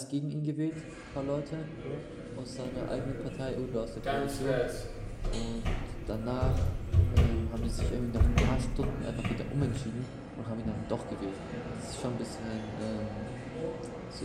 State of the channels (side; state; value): both; identical; correlation 1.00